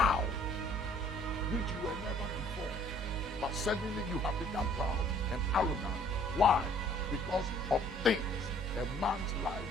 which you were never before. But suddenly you have become proud and arrogant. Why? Because of things. A man's life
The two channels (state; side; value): normal; both; correlation 0.57